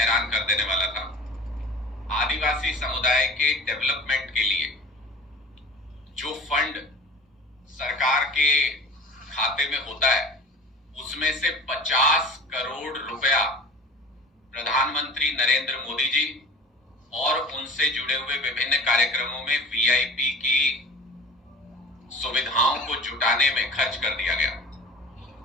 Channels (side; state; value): both; normal; correlation 0.40